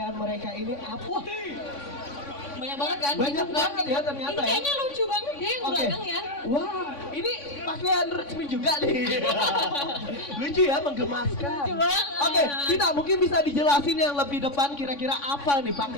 mereka ini apa? Banyak banget kan? Banyak banget ya ternyata. Ini kayaknya lucu banget deh yang belakang ya. Wah, ini pakaian resmi juga nih. Lucu ya, menggemaskan. Lucu banget. Oke, kita mungkin bisa dijelasin yang lebih depan kira-kira apa nih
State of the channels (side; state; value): right; late; 3.5 ms